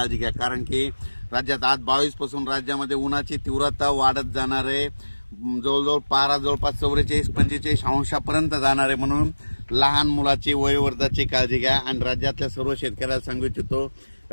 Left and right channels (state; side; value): inverted; both; correlation -1.00